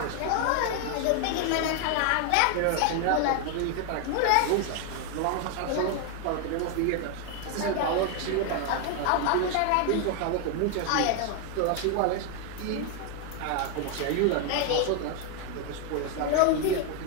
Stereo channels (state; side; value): different; both; correlation 0.01